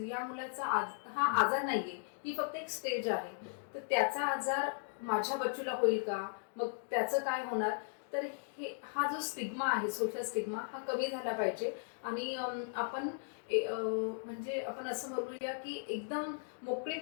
या मुलाचा हा आजार नाहीये, ही फक्त एक स्टेज आहे. तर त्याचा आजार माझ्या बच्चूला होईल का, मग त्याचं काय होणार. तर हा जो स्टिग्मा आहे, सोशल स्टिग्मा, हा कमी झाला पाहिजे. आणि आपण म्हणजे आपण असं बोलूया की एकदम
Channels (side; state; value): right; silent; digital silence